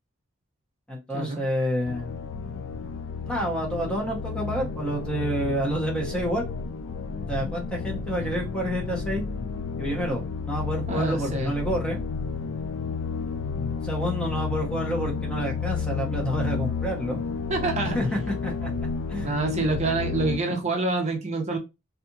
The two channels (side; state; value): both; normal; correlation 0.51